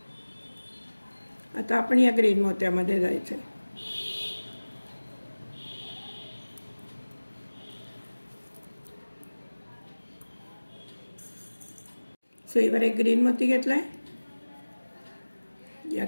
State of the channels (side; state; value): both; inverted; correlation -1.00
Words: आता आपण या ग्रीन मोत्यामध्ये जायचं आहे. सुईवर एक ग्रीन मोती घेतलाय. या